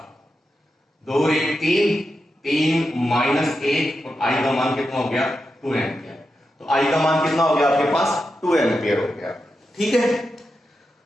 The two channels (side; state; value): both; normal; correlation 0.88